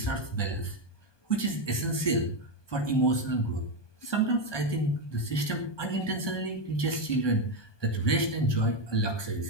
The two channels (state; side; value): late; right; 1.2 ms